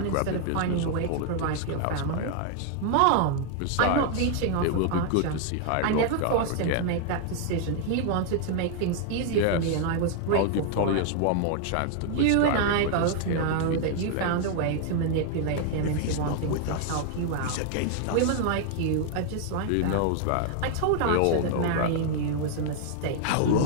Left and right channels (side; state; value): both; different; correlation 0.00